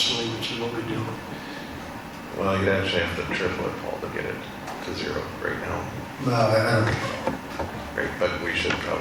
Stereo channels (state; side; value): identical; both; correlation 1.00